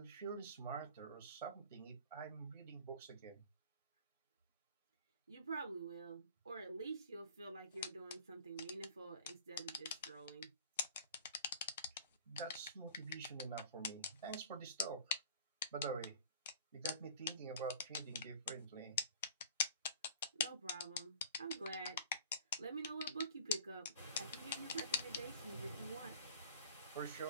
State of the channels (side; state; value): both; inverted; correlation -0.45